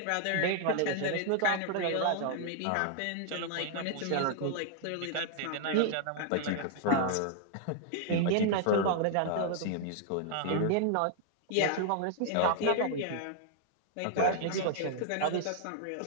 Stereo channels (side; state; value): both; different; correlation 0.00